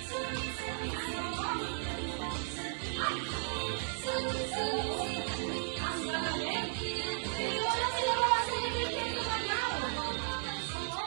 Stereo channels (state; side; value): silent; left; digital silence